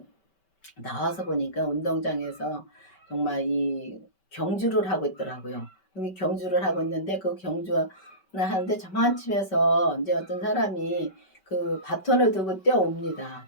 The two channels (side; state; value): right; late; 5.2 ms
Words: 나와서 보니까 운동장에서 정말 이 경주를 하고 있더라고요. 이 경주를 하고 있는데 그 경주를 하는데 저만침에서 이제 어떤 사람이 그 바톤을 들고 뛰어옵니다.